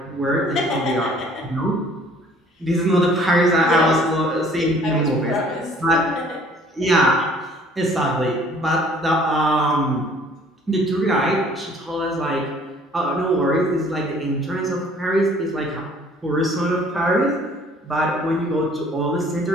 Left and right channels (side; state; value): both; normal; correlation 0.56